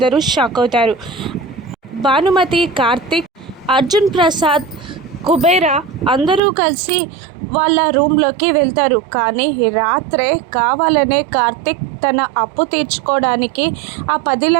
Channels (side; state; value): left; drops out; at 6.4 s